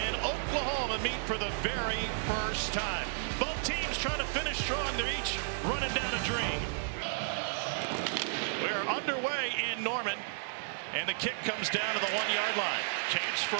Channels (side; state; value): left; silent; digital silence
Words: Oklahoma meet for the very first time. Both teams trying to finish strong. They're each running down a dream. We are underway in Norman, and the kick comes down to the 1-yard line. Chance